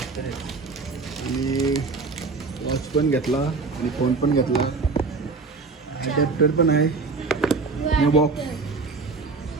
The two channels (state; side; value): quieter; left; 4.2 dB